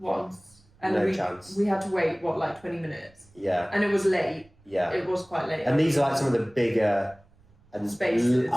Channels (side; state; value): right; noise; rumble, 30 dB below the sound